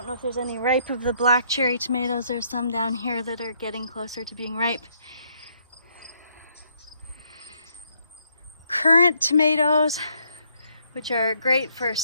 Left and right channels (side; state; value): both; inverted; correlation -0.71